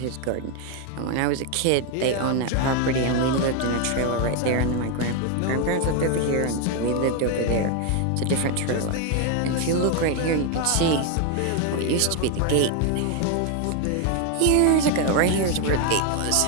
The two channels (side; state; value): both; different; correlation 0.01